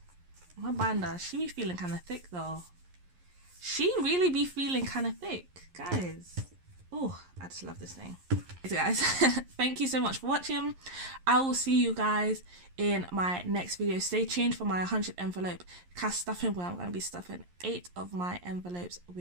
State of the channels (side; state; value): left; late; 11 ms